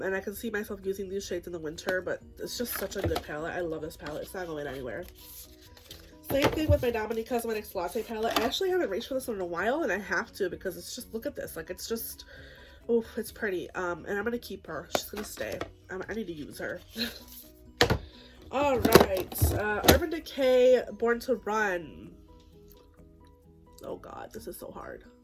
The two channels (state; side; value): identical; both; correlation 1.00